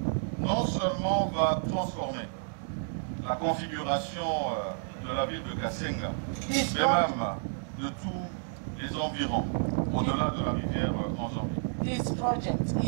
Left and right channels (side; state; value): left; silent; digital silence